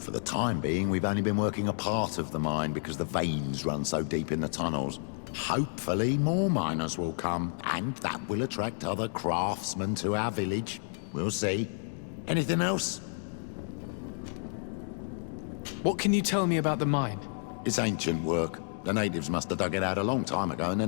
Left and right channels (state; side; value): silent; right; digital silence